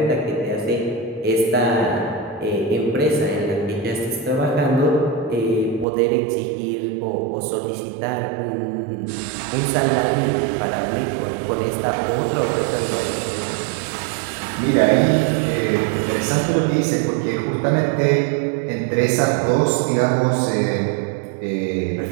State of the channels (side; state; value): left; drops out; at 5.9 s